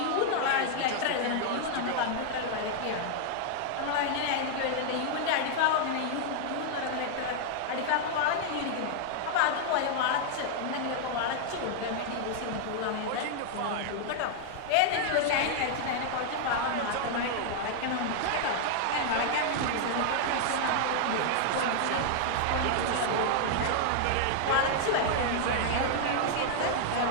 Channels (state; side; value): different; both; correlation 0.00